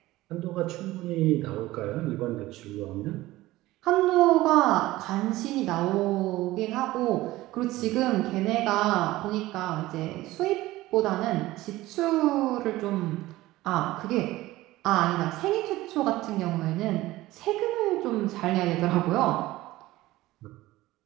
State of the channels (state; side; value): quieter; left; 17.5 dB